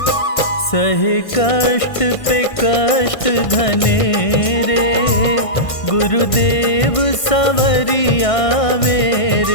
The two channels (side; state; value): right; late; 1.6 ms